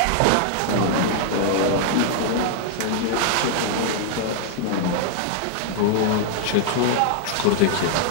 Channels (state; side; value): different; both; correlation -0.01